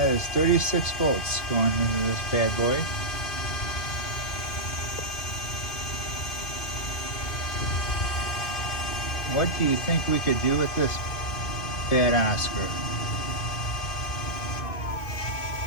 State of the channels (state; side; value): late; right; 2.5 ms